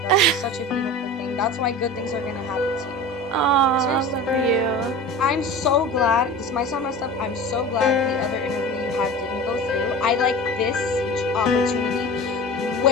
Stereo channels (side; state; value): both; normal; correlation 0.34